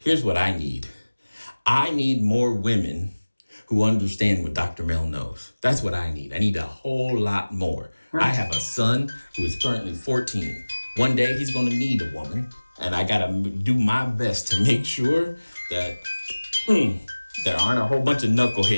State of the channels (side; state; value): both; inverted; correlation -1.00